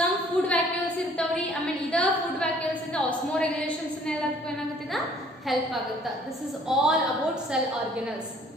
food vacuoles ಇರ್ತಾವ್ರಿ ಆಮೇಲೆ ಇದ ಫುಡ್ ವ್ಯಾಕ್ಯೂಲ್ಸ್ ಇಂದ ಆಸ್ಮೋರೆಗ್ಯುಲೇಷನ್ಸ್ ಎಲ್ಲದಕ್ಕೂ ಏನಾಗುತ್ತಿದ ಹೆಲ್ಪ್ ಆಗುತ್ತೆ this is all about cell organelles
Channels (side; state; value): both; normal; correlation 0.57